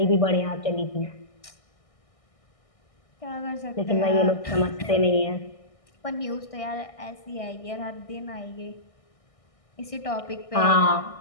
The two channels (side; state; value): right; late; 1.6 ms